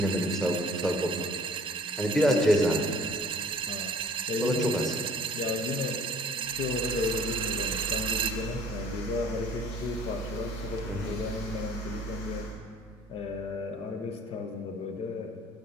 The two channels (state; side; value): normal; both; correlation 0.52